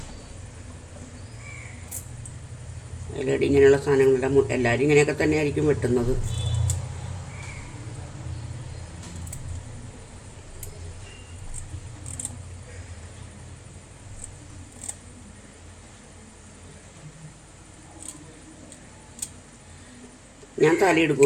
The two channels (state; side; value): identical; both; correlation 1.00